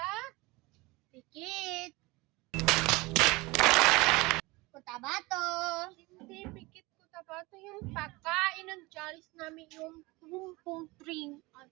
Pikit. Cotabato. hindi Pikit Cotabato, yung pagkain ng challenge namin yung pumpong string at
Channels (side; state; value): left; quieter; 23.2 dB